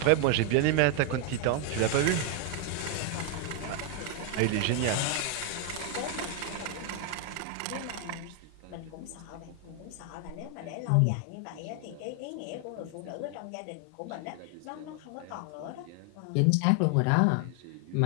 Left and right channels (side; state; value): both; different; correlation 0.01